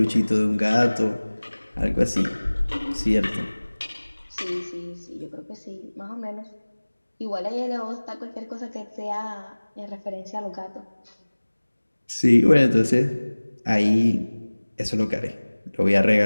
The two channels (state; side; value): inverted; both; correlation -1.00